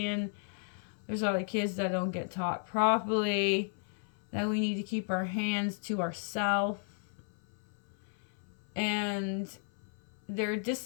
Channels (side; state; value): right; silent; 55 dB below the other